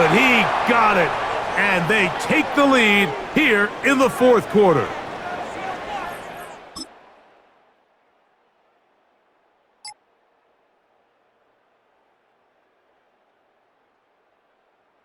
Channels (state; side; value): identical; both; correlation 1.00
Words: He got it. And they take the lead here in the 4th quarter.